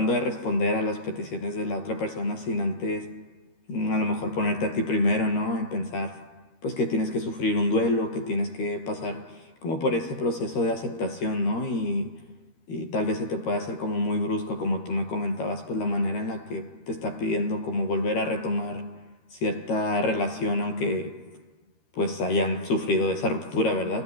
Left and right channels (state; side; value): late; right; 13 ms